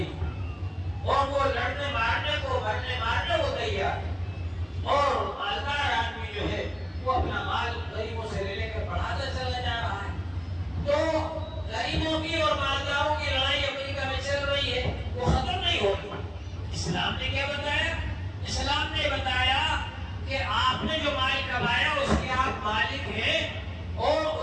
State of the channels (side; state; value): both; identical; correlation 1.00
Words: اور وہ لڑنے مارنے کو، مرنے مارنے کو تیار، اور مالدار آدمی جو ہے وہ اپنا مال غریبوں سے لے لے کر بڑھاتا چلا جا رہا ہے۔ تو غریبوں کی اور مالداروں کی لڑائی امریکہ میں چل رہی ہے، وہ ختم نہیں ہوگی۔ اسلام نے کیا بتایا؟ اسلام نے بتایا کہ آپ نے جو مال کمایا اس کے آپ مالک ہیں، اور